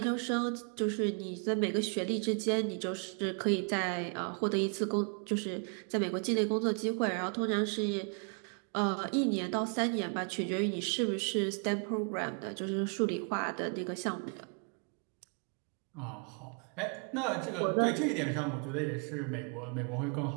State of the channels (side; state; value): left; quieter; 39.0 dB